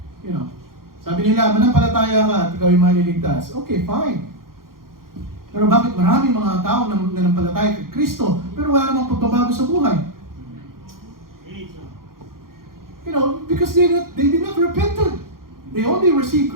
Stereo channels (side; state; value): left; late; 0.92 ms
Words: Sabi nila, manampalataya ka at ikaw ay maliligtas. Okay, fine. Pero bakit maraming mga tao na nanampalataya kay Kristo, pero wala namang pagbabago sa buhay? Because they did not repented. They only received